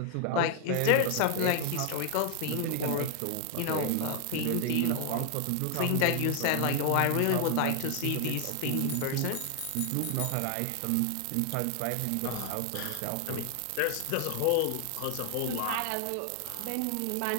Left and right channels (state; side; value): different; both; correlation 0.00